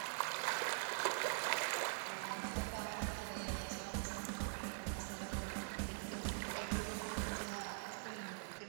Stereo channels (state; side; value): silent; left; digital silence